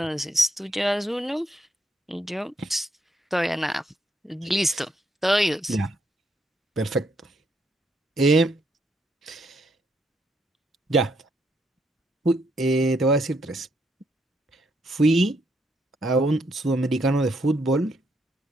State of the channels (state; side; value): normal; both; correlation 0.75